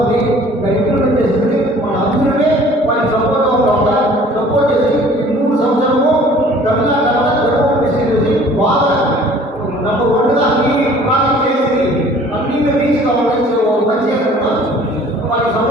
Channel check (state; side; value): normal; both; correlation 0.51